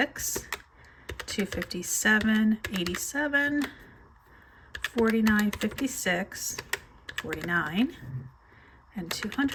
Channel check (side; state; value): both; identical; correlation 1.00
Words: $257.87, $49.56, $49, and